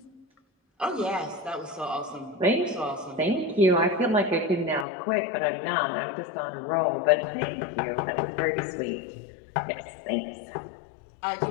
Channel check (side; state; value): right; drops out; at 4.9 s